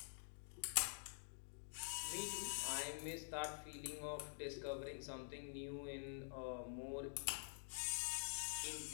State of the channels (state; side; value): silent; right; digital silence